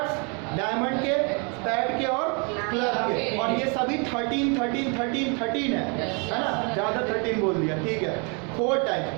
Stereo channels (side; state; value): left; quieter; 35.0 dB